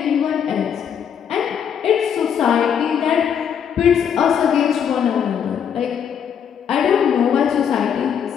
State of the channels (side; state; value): right; quieter; 8.1 dB